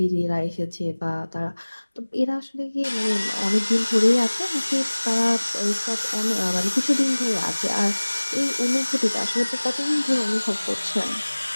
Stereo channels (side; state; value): both; inverted; correlation -1.00